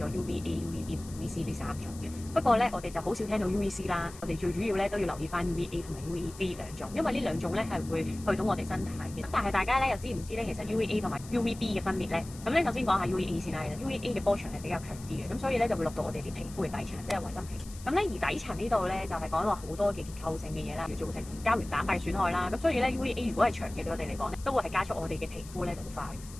UVA、UVB、UVC 呢3種嘅。不過咧，我哋就好少聽到 UVC 啦。我哋最主要咧都要留意翻 UVA 同埋 UVB 兩種，因為呢兩種咧係會去到我哋身體嘅。但係大家咧又知唔知咧，其實 UVA 同埋 UVB 嘅分別咧？咁咧首先講下 UVA 先啦。UVA 嘅波長係比較強啲嘅，咁所以咧就會落到我哋啲皮膚嘅底層，即係維真皮。咁咧而底層呢度咧就係講話好多嘅結構性嘅嘢啦，要造成膠原蛋白損害啦。咁所以咧 UVA 如果係長期對我哋嚟講咧，都會係加速我哋嘅皮膚咧老化，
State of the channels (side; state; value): left; noise; hiss, 18 dB below the sound